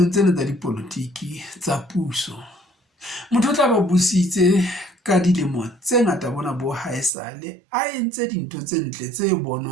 tsena tsa dipolotiki tsa puso, motho o tla ba busitse ka dilemo tse ngata bona bo haesale a entse dintho tse ntle tse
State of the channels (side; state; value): left; drops out; at 7.1 s